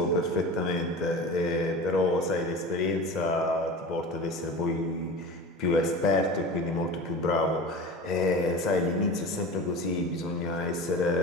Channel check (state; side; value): normal; both; correlation 0.33